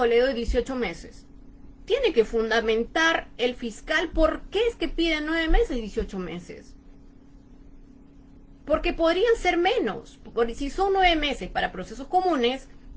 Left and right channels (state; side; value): identical; both; correlation 1.00